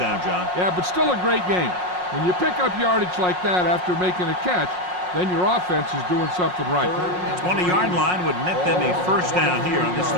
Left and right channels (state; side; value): late; left; 5.5 ms